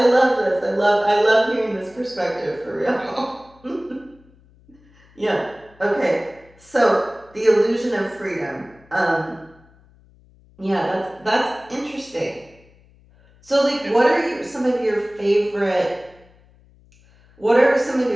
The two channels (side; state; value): left; noise; hum, 29 dB below the sound